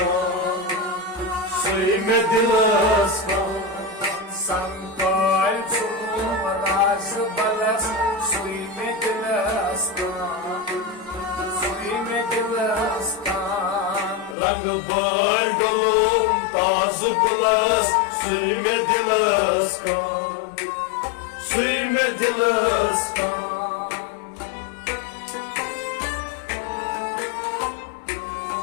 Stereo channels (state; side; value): drops out; right; at 14.4 s